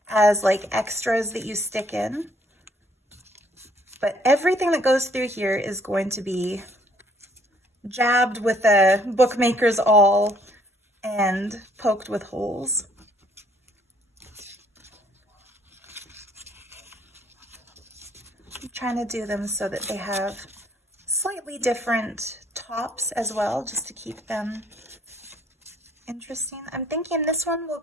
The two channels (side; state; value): both; normal; correlation 0.64